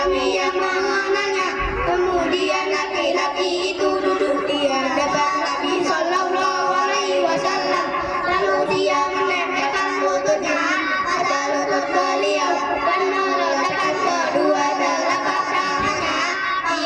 yang mengenalnya. Kemudian laki-laki itu duduk di hadapan Nabi Sallallahu Alaihi Wasallam, lalu dia menempelkan lututnya pada lutut beliau dan meletakkan kedua telapak tangannya di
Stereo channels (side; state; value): both; identical; correlation 1.00